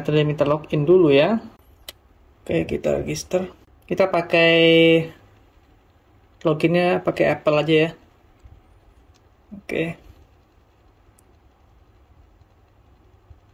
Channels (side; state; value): both; identical; correlation 1.00